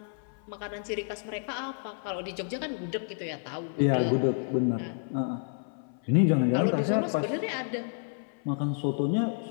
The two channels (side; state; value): right; silent; 58 dB below the other